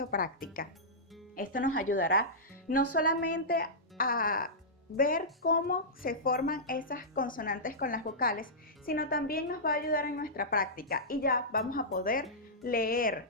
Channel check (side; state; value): both; normal; correlation -0.14